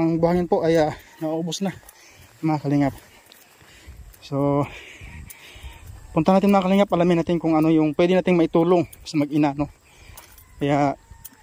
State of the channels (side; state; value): both; identical; correlation 1.00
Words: buhangin po ay naubos na mga kalingap. So punta natin mga kalingap, alamin natin kung ano yung pwede nating maitulong sa mag-ina, Kaya